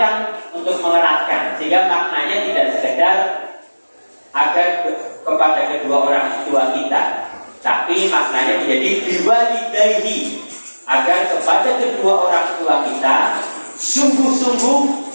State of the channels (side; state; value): both; inverted; correlation -1.00